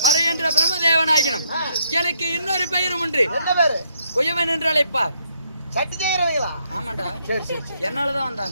மறை என்ற பிரம்மதேவனாகினும் எனக்கு இன்னொரு பெயரும் உண்டு. என்ன பேரு? குயவன் என்று அழைப்பார். சட்டி செய்யறவங்களா? ஆமாண்டா. சரி சரி என்னாலதான்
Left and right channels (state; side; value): inverted; both; correlation -0.73